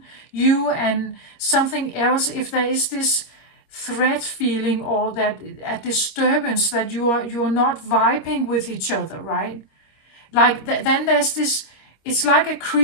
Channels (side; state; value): right; late; 26 ms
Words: you and something else. If there is this threat feeling, or that a disturbance, that you're not vibing with each other, right? Like then there's this, it's like a